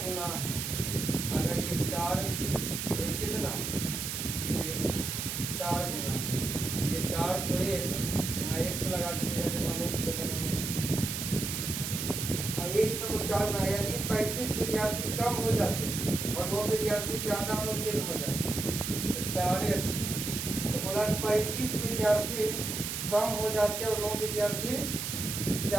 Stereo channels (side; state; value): right; noise; hiss, 3 dB below the sound